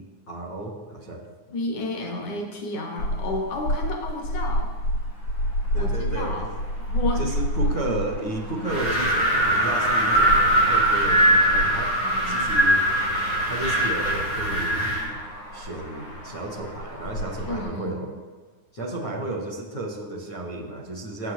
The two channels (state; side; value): late; right; 9.6 ms